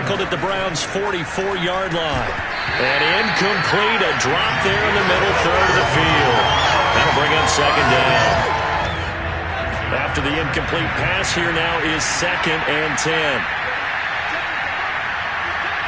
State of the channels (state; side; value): identical; both; correlation 1.00